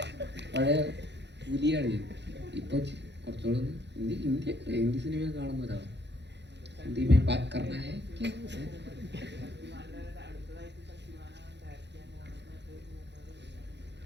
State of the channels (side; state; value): left; late; 0.51 ms